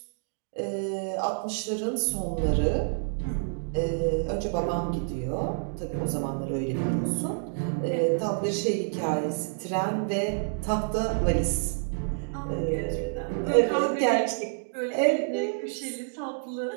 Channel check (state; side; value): silent; left; digital silence